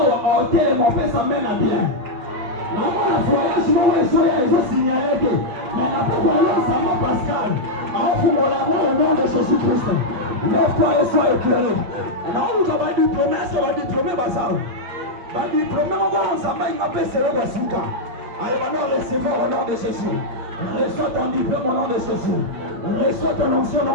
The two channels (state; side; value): late; left; 8.6 ms